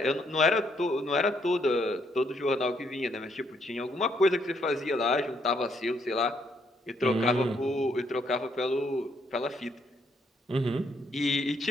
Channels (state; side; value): normal; both; correlation 0.72